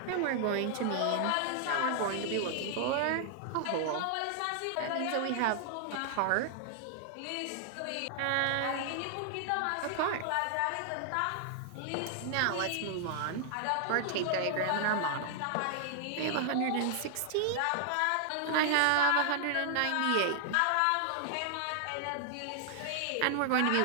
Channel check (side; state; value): both; different; correlation 0.00